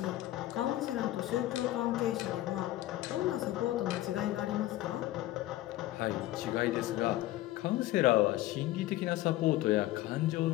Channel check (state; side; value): quieter; right; 15.7 dB